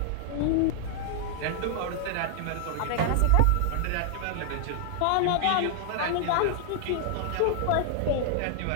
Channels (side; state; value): both; different; correlation -0.01